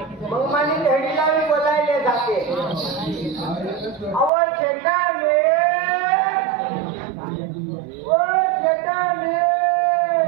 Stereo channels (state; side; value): drops out; left; at 4.3 s